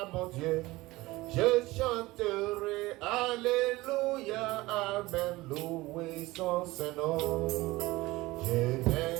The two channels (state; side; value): quieter; left; 19.9 dB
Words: mon Dieu. Je chanterai Alléluia, Amen, loué son Saint-Nom. Je